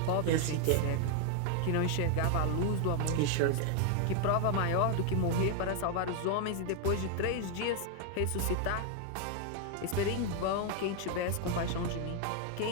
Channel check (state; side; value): different; both; correlation 0.00